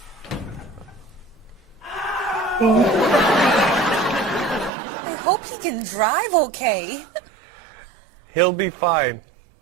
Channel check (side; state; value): left; drops out; at 4.7 s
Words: I hope he can drive okay. He'll be fine.